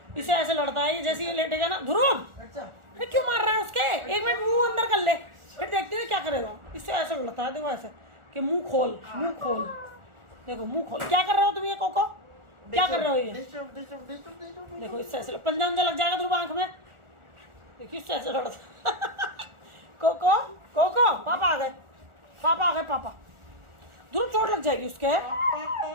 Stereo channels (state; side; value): late; left; 1.4 ms